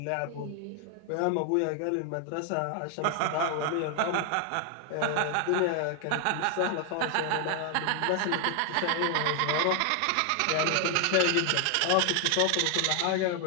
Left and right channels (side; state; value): both; different; correlation 0.00